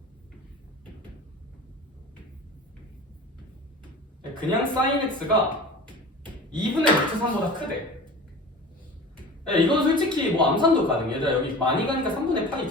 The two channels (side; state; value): both; normal; correlation 0.37